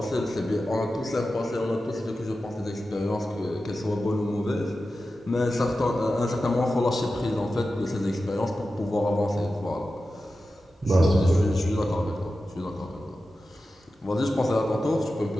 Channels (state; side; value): normal; both; correlation 0.93